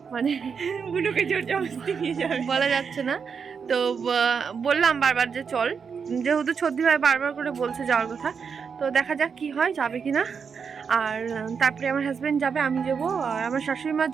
মানে বুনুকে জোর জবরদস্তি নিয়ে যাবে বলা যাচ্ছে না। তো বললাম বারবার যে চল, যেহেতু ছর্দি ভাই বারবার করে বলছে যাওয়ার কথা, তো দেখা যাক কি হয়, যাবে কিনা। আর তারপরে আমার হাজব্যান্ড যাবে, আমি যাবো। আর আমার শাশুড়ি মা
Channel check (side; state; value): left; quieter; 6.2 dB